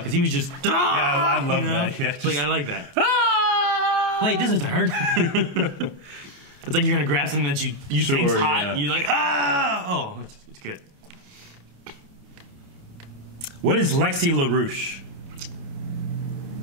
because he was just... Yeah, I love that. Yeah, just, like, I like that. Wait, this isn't hurt. It's like you're going to grab something that you think's hot. Yeah. And you're like, ah! Oh, it's good. What is Lexi LaRouche?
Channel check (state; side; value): late; left; 29 ms